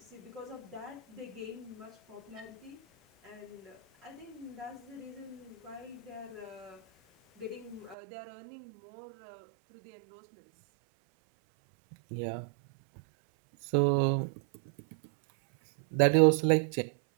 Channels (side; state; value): left; drops out; at 8.0 s